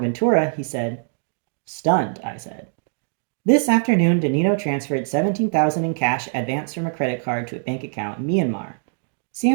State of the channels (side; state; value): left; silent; 64 dB below the other